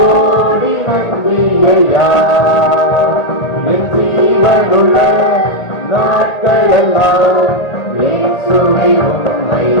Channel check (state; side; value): late; right; 1.8 ms